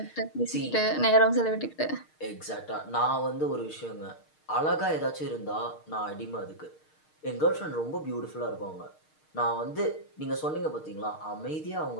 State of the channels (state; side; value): late; right; 6.5 ms